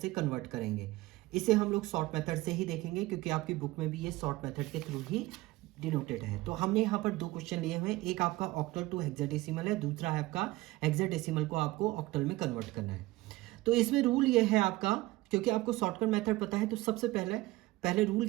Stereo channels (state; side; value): quieter; left; 19.2 dB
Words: कन्वर्ट करेंगे। इसे हम लोग शॉर्ट मेथड से ही देखेंगे, क्योंकि आपकी बुक में भी ये शॉर्ट मेथड के थ्रू ही डिनोटेड है। तो हमने यहाँ पर दो क्वेश्चन लिए हुए हैं, एक आपका ऑक्टल टू हेक्साडेसिमल है, दूसरा है आपका हेक्साडेसिमल को आपको ऑक्टल में कन्वर्ट करना है। तो इसमें रूल ये है आपका, क्योंकि आपको शॉर्टकट मेथड पता है, तो सबसे पहले रूल